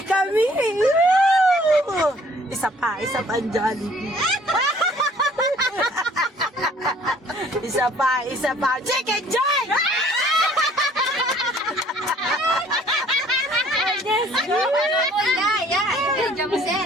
kami. Isa pa ang Jollibee. Isa pa. Chicken Joy!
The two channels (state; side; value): normal; both; correlation 0.57